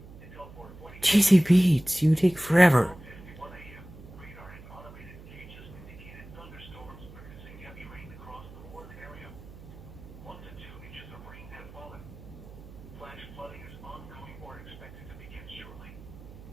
GC beats, you take forever.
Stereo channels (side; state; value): right; noise; hum, 17 dB below the sound